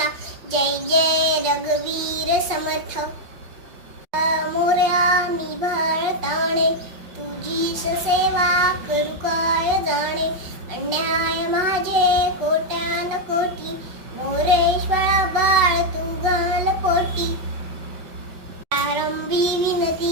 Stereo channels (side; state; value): left; late; 5.3 ms